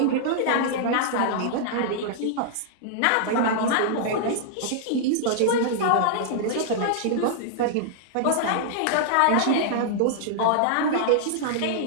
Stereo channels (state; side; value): different; both; correlation -0.01